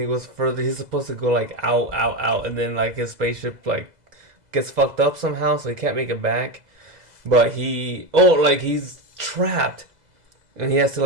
he goes further. He's supposed to go like out, and then like his spaceship like gets fucked up somehow, so he can't make it back. But he's trapped, and he has to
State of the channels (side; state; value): left; late; 2.0 ms